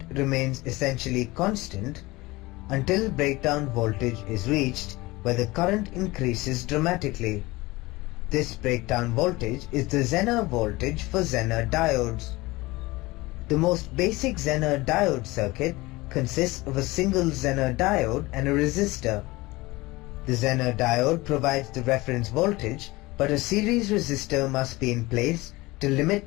remains essentially constant until breakdown voltage is reached, where the current increases dramatically. This breakdown voltage is the Zener voltage for Zener diodes. The most basic Zener diode circuit consists of a single Zener diode and a resistor. The Zener diode provides the reference voltage, but a series resistor must be in place to limit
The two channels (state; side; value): quieter; right; 21.2 dB